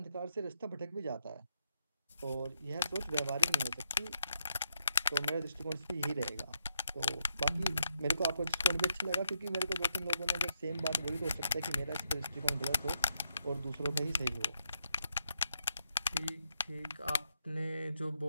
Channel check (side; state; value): both; inverted; correlation -0.80